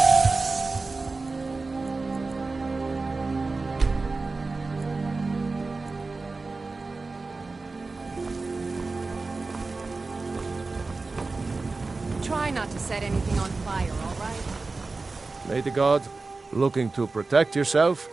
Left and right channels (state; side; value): quieter; left; 3.8 dB